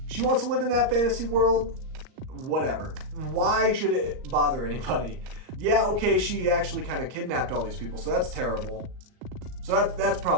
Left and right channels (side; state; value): left; late; 38 ms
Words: She wants to live in that fantasy world, whatever. Why should it bother anybody? Yeah, okay, she actually kind of kidnapped all these people, so that's terrible. So that's